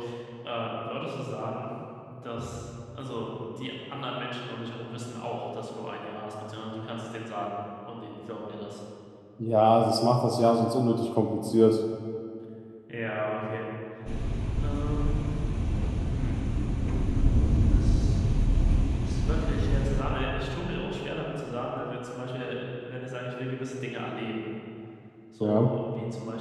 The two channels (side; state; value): both; identical; correlation 1.00